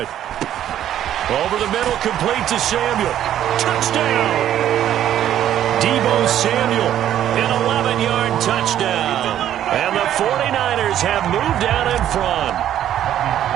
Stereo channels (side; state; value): left; quieter; 11.2 dB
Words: Over the middle, complete to Samuel. Touchdown! Deebo Samuel, an 11-yard touchdown. And the 49ers have moved out in front.